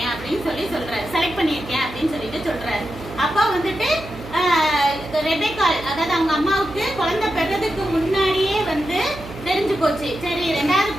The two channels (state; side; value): noise; right; hum, 14 dB below the sound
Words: அப்படின்னு சொல்றாரு, செலக்ட் பண்ணியிருக்கேன் அப்படின்னு சொல்லிட்டு சொல்றாரு. அப்பா வந்துட்டு ரெபெக்காள், அதாவது அவங்க அம்மாவுக்கு குழந்தை பெறதுக்கு முன்னாடியே தெரிஞ்சு போச்சு. சரி, ரெண்டாவது